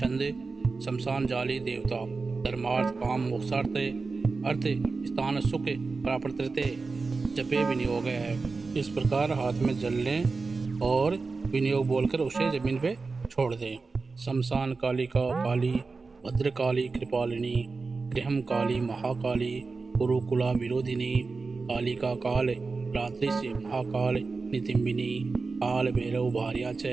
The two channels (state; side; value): quieter; left; 4.2 dB